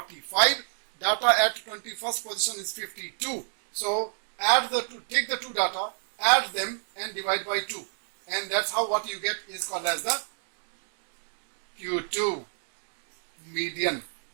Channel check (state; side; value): silent; left; digital silence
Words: data at 21st position is 52. So add the two, take the two data, add them and divide by 2, and that's how what you get is called as the Q2 median.